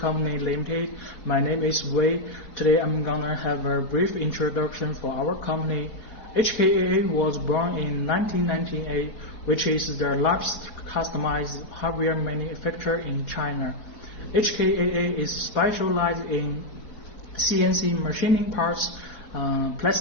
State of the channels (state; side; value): late; right; 4.4 ms